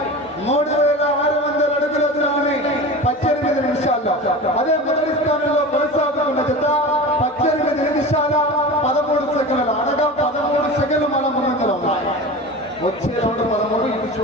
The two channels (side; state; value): both; normal; correlation 0.31